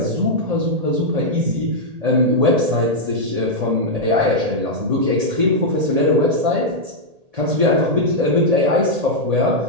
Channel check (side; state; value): left; late; 1.8 ms